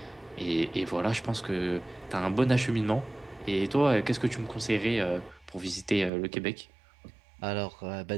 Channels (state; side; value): drops out; left; at 6.1 s